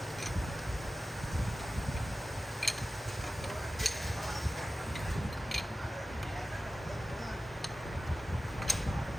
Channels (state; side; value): normal; both; correlation 0.95